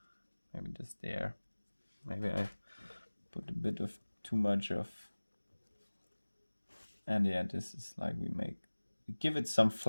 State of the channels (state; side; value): inverted; both; correlation -1.00